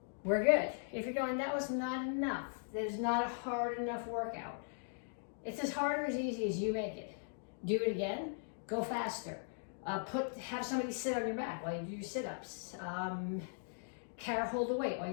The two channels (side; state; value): right; silent; digital silence